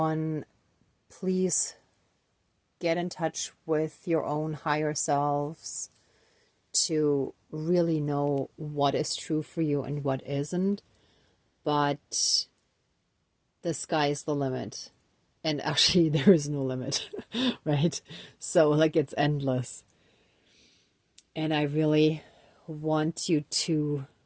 please get in touch with your own higher selves to really know what is true for you and what isn't. but the sky is the limit. And actually, there is no limit, right? So, like, it's endless. And I really want you to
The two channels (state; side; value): identical; both; correlation 1.00